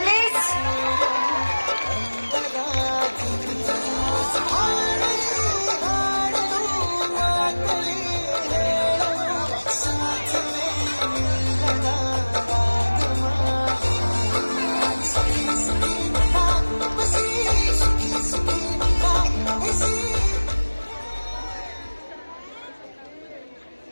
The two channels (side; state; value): both; inverted; correlation -1.00